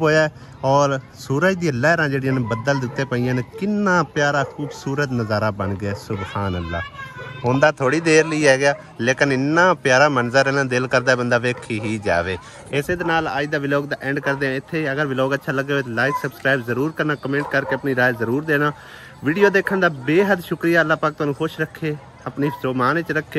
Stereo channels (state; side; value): identical; both; correlation 1.00